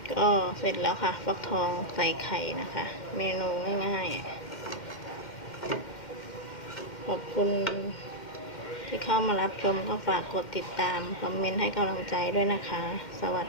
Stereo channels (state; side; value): late; right; 2.1 ms